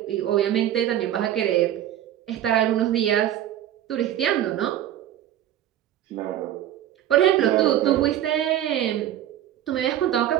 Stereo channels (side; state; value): left; quieter; 11.9 dB